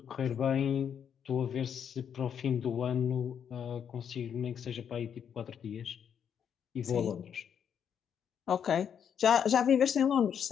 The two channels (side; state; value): right; quieter; 8.1 dB